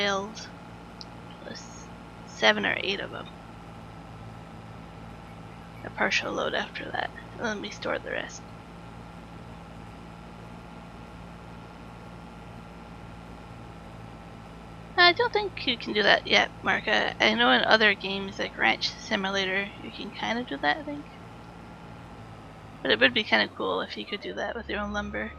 plus 7 or 8 of them. A partial load after that. And let me store the rest. I don't think you can do that yet, Mark. I know in other games like Ranch Simulator you can kind of do that, I think. But it would be kind of cool if you could do that with your own lumber.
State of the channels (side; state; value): both; identical; correlation 1.00